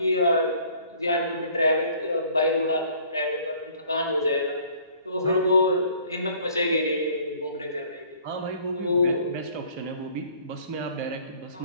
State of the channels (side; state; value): both; inverted; correlation -0.55